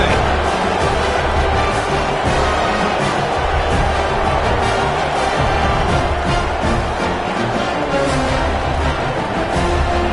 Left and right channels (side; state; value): both; identical; correlation 1.00